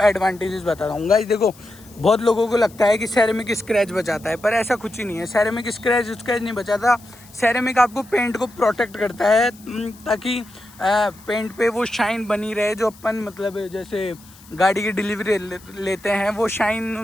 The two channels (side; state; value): left; noise; hiss, 24 dB below the sound